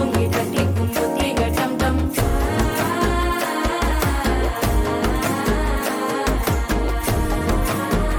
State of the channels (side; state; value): both; identical; correlation 1.00